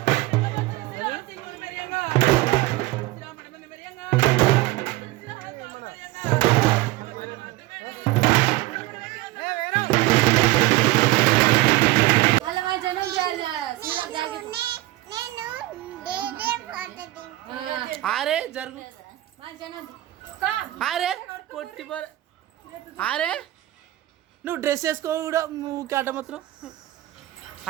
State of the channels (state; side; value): quieter; left; 17.8 dB